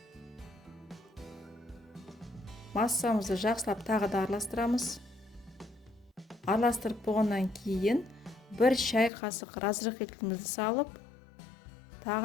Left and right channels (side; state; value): right; drops out; at 9.1 s